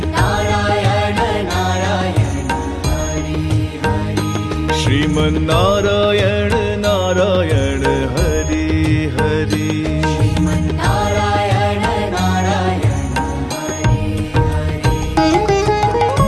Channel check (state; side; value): identical; both; correlation 1.00